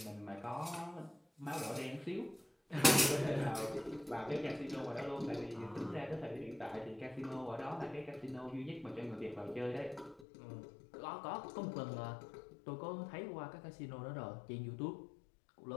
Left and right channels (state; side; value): drops out; right; at 10.2 s